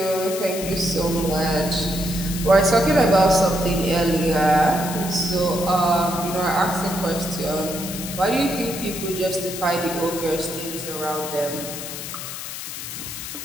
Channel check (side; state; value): left; noise; hiss, 8 dB below the sound